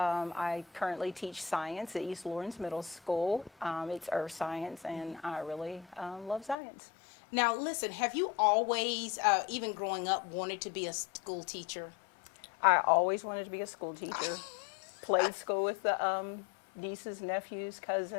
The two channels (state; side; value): drops out; right; at 6.6 s